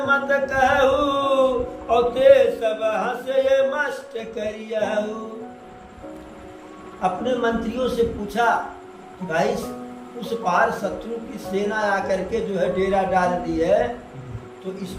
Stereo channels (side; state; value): both; identical; correlation 1.00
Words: मत कहू और ते सब हंसे मस्त करियहु। अपने मंत्रियों से पूछा कि भाई उस पार शत्रु की सेना आकर के जो है डेरा डाल दी है, तो इस